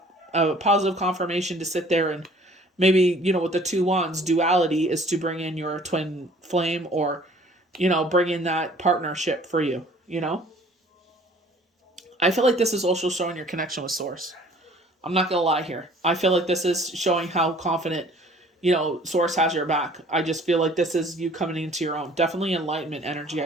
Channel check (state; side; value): normal; both; correlation 0.53